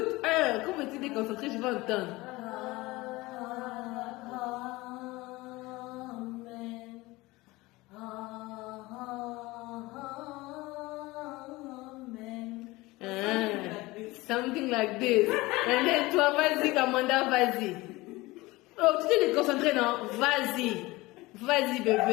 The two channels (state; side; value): quieter; right; 20.9 dB